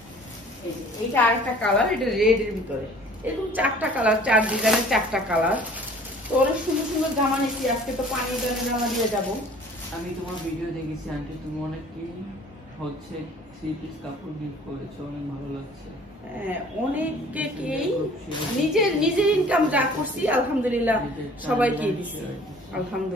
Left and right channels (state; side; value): normal; both; correlation 0.51